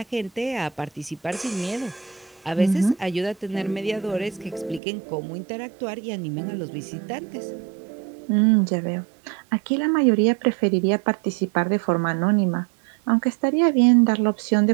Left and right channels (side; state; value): left; drops out; at 4.8 s